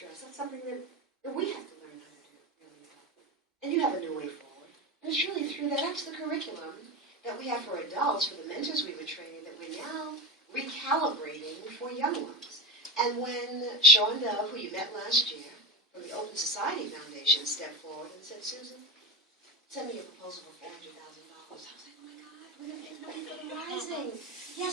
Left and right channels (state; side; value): normal; both; correlation 0.23